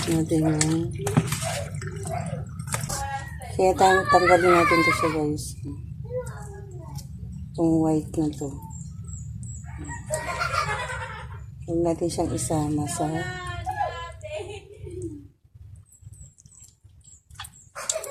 natin yan. Kaya tanggalin natin ito siya guys. Itong white na to. Huwag natin siyang isama sa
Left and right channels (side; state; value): both; identical; correlation 1.00